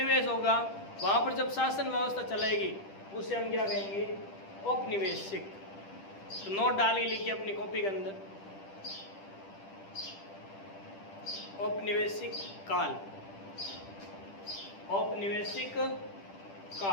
होगा वहाँ पर जब शासन व्यवस्था चलेगी उसे हम क्या कहेंगे? औपनिवेशिक। तो नोट डालिए, लिखिए अपनी कॉपी के अंदर, औपनिवेशिक काल। औपनिवेशिक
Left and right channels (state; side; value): late; right; 10 ms